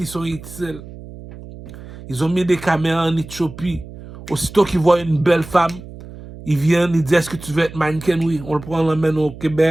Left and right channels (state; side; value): noise; right; hum, 15 dB below the sound